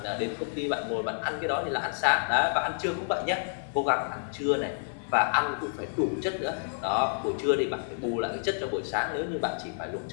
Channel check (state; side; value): silent; right; 58 dB below the other